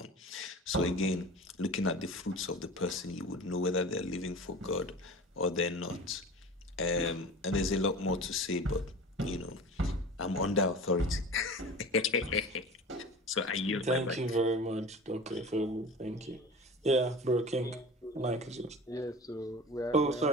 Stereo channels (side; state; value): both; normal; correlation 0.36